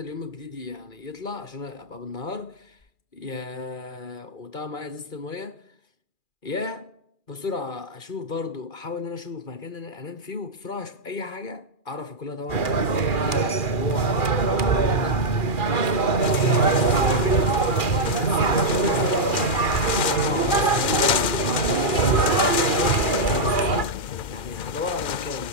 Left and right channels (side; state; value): right; late; 2.4 ms